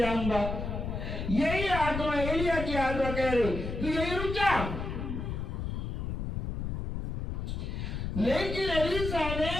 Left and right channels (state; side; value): noise; left; rumble, 4 dB below the sound